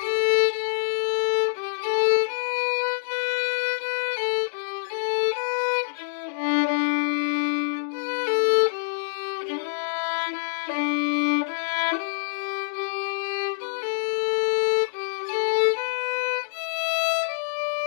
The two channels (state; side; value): silent; right; digital silence